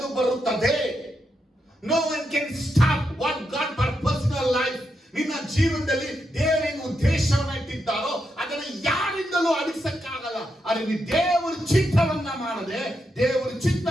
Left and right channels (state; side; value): normal; both; correlation 0.83